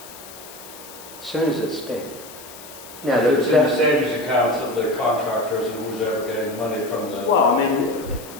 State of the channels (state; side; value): noise; left; hiss, 17 dB below the sound